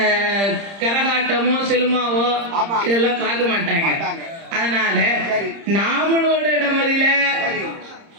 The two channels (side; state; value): left; late; 30 ms